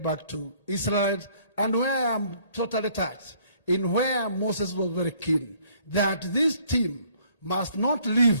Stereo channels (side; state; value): both; inverted; correlation -0.61